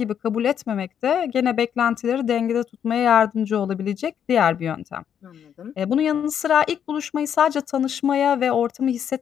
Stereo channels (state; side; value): quieter; right; 8.6 dB